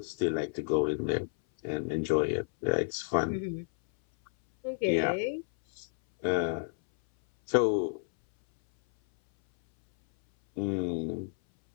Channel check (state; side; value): silent; right; 58 dB below the other